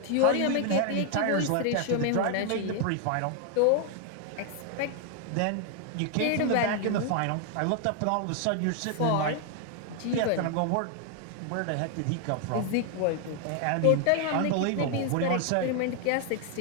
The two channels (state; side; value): different; both; correlation 0.00